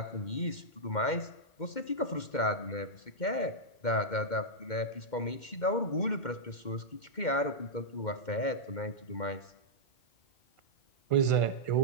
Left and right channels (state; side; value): late; right; 2.1 ms